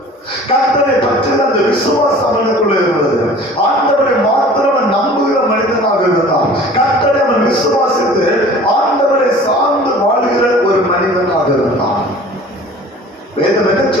கர்த்தரை பற்றின அந்த விசுவாசம் அவனுக்குள்ள இருந்தது. ஆண்டவரை மாத்திரம் நம்புகிற மனிதனாக இருந்தான். கர்த்தரை அவன் விசுவாசித்து ஆண்டவரை சார்ந்து வாழ்கிற ஒரு மனிதனாக இருந்தான். வேதம் என்ன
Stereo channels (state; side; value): normal; both; correlation 0.45